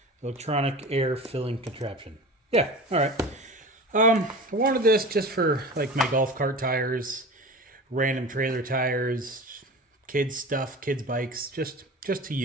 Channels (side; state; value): both; normal; correlation 0.34